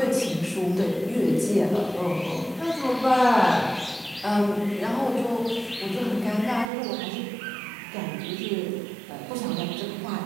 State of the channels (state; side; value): drops out; left; at 6.7 s